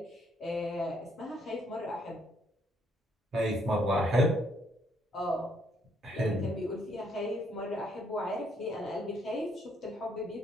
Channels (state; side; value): normal; both; correlation 0.70